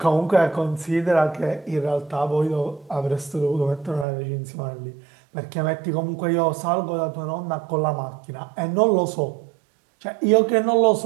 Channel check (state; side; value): drops out; left; at 4.0 s